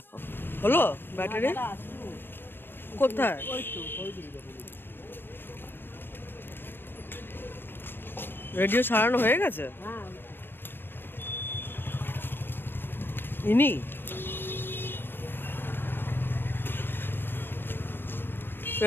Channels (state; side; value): late; right; 0.098 ms